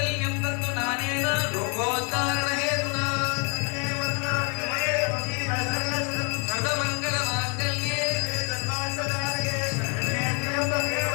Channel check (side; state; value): right; quieter; 37.4 dB